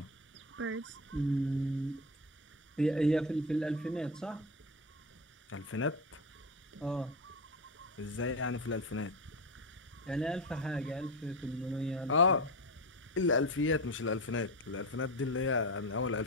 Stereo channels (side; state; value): both; normal; correlation 0.20